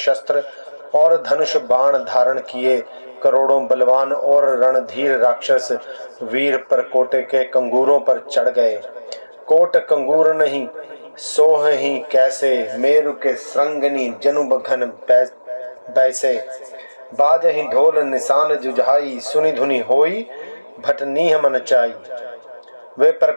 और धनुष बाण धारण किए करोड़ों बलवान और रणधीर राक्षस वीर परकोटे के कंगूरों पर चढ़ गए। कोट कंगूर नहीं सोह ही कैसे, मेरु के श्रृंगनी जनुब घन बैसे। बाजहि ढोल निशान जुझाई, सुनि धुनि होई भटनीह मन चाई। वे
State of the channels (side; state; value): both; inverted; correlation -1.00